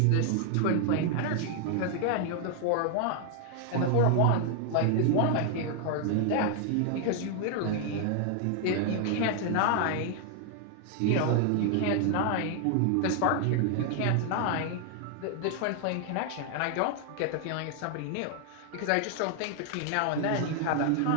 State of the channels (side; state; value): both; different; correlation 0.00